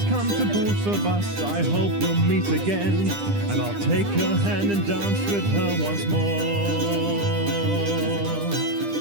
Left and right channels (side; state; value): left; late; 10 ms